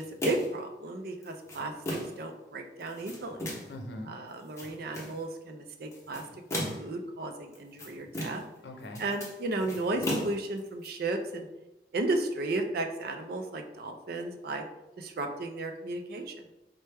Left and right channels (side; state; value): both; normal; correlation 0.43